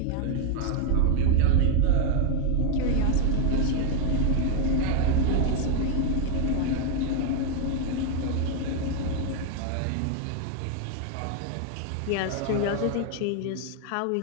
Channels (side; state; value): both; different; correlation 0.01